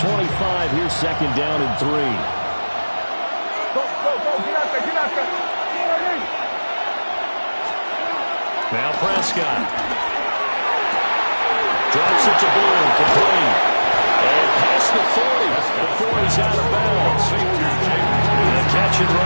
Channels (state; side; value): inverted; both; correlation -1.00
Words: Here's second down and 3. Now Prescott. Drops it to Bull, complete. And past the 40 before he's out of bounds. And a catch and